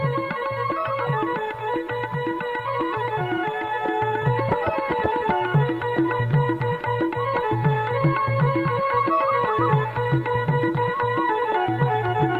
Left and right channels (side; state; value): both; identical; correlation 1.00